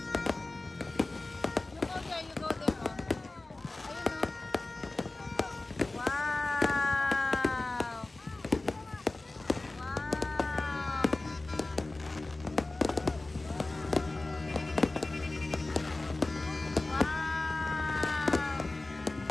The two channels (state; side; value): quieter; right; 3.0 dB